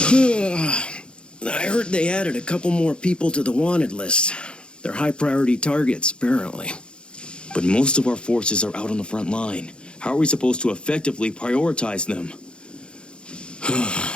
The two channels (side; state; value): right; late; 0.054 ms